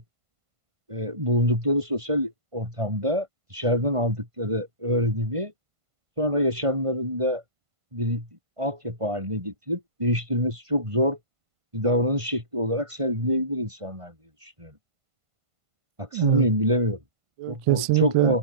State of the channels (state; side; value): late; left; 1.5 ms